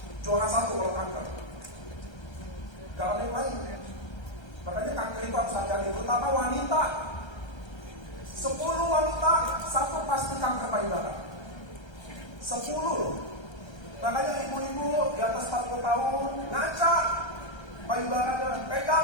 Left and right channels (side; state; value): right; late; 1.3 ms